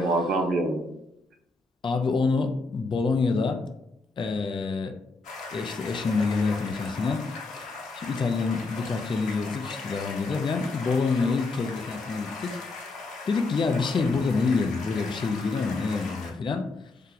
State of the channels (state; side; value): quieter; right; 3.3 dB